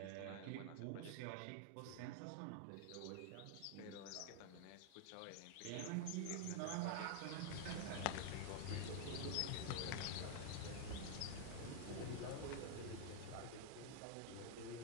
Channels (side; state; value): both; different; correlation 0.00